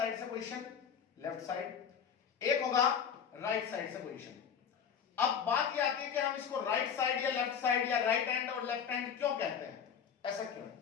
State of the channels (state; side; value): quieter; right; 7.5 dB